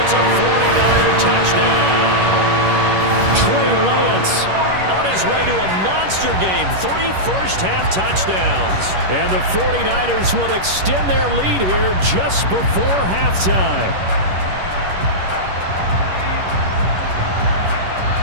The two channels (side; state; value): left; late; 11 ms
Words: It's a 49er touchdown. Trey Lance on his way to a monster game. 3 first-half touchdowns. And the 49ers will extend their lead here just before halftime.